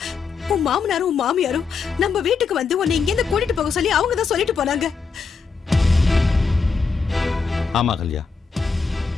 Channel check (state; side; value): quieter; right; 5.0 dB